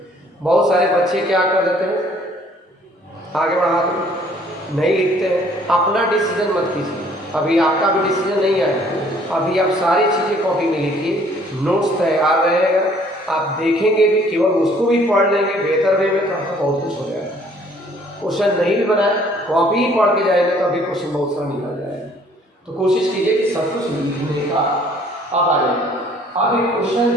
बहुत सारे बच्चे क्या कर देते हैं, आगे बढ़ा दो, नहीं लिखते हैं। अपना डिसीजन मत कीजिए, अभी आपका भी डिसीजन नहीं आया, अभी आप सारी चीज़ें कॉपी में लिखिए, नोट्स तैयार रहेगा, आप देखेंगे भी, केवल उसको भी पढ़ लेंगे बेहतर वे में तो आपका बहुत कुछ हो जाएगा। क्वेश्चन नहीं भी बनाए, कॉपी ही पढ़ के जाएंगे तो अभी क्वेश्चन बहुत सारा निकल जाएगा। तो कोशिश कीजिए कि सब कुछ लिखने का। अब आ जाएगा, अब एक क्वेश्चन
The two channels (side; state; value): both; normal; correlation 0.59